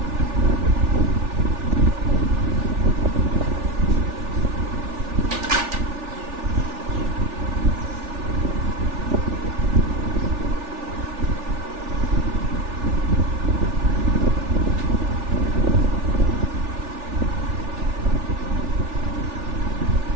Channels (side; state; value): left; late; 3.4 ms